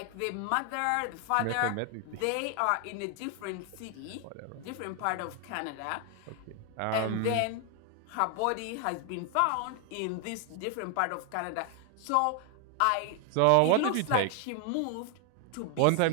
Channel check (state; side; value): different; both; correlation 0.00